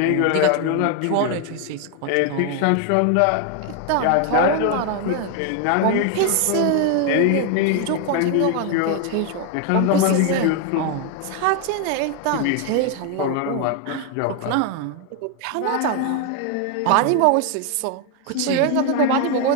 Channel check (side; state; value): both; different; correlation 0.01